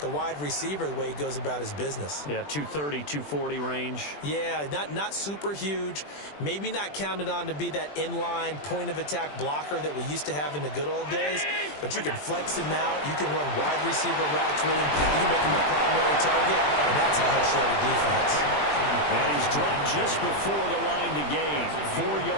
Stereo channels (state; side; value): late; right; 20 ms